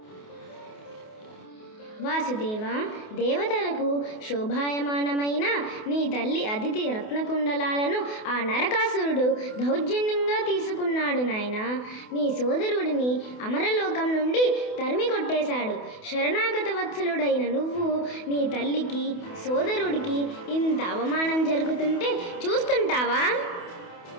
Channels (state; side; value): late; right; 28 ms